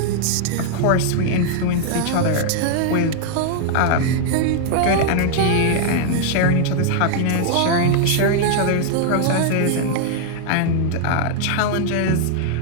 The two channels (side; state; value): both; different; correlation -0.01